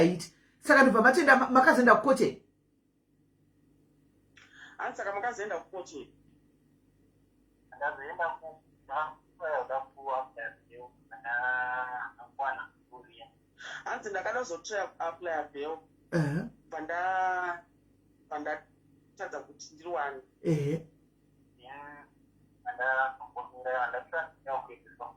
saka ndobva matenda makazoenda kukoche hanzi saka makazoenda kukoche hanzi ndakada kuzotry apply bail pandatadza kuti ndiriwani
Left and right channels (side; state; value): both; identical; correlation 1.00